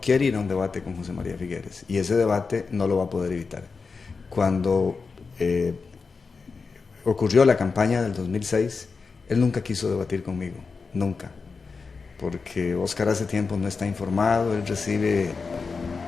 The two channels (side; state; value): right; quieter; 4.7 dB